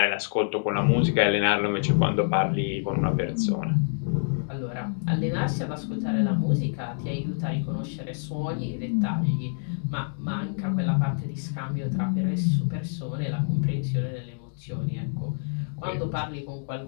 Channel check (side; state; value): right; silent; digital silence